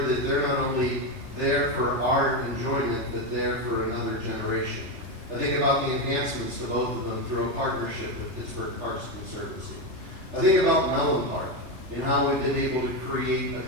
that they're not only there for our enjoyment, but there for another generation. I think about the enhancements to both of them through a partnership with Pittsburgh Parks Conservancy. I think about Mellon Park and how we've been able to create a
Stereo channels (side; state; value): left; late; 3.3 ms